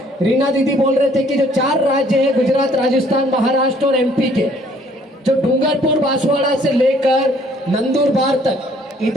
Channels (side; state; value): both; normal; correlation 0.61